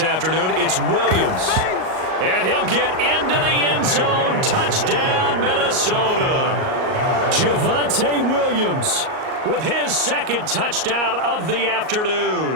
it's Williams. And he'll get into the end zone. Touchdown, Minnesota. Javonte Williams with his 2nd touchdown of the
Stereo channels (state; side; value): late; left; 38 ms